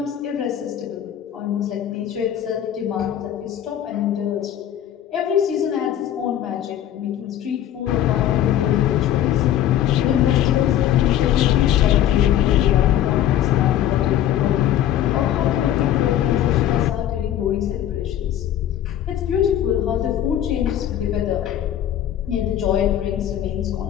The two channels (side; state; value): right; quieter; 11.2 dB